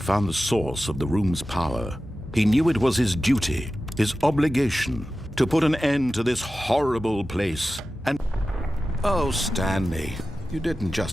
the source of the room's power, he knew it was his duty, his obligation, to put an end to this horrible place. And oh, Stanley, you didn't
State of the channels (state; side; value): normal; both; correlation 0.94